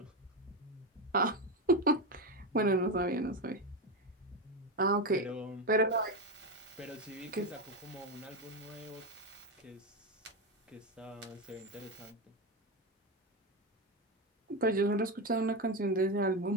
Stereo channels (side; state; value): both; normal; correlation 0.13